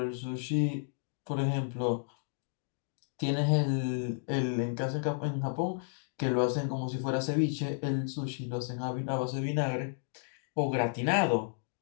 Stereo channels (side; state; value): right; silent; digital silence